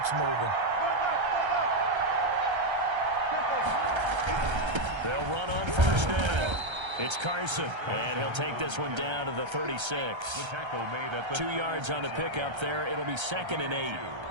moving. They'll run on 1st down. It's Carson, and he'll take this one down to the 36. The tackle made at the 2 yards on the pickup there. It'll be 2nd and 8.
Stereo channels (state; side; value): late; left; 1.3 ms